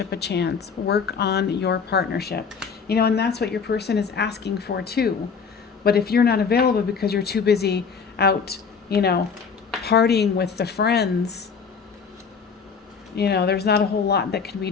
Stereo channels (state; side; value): quieter; right; 5.9 dB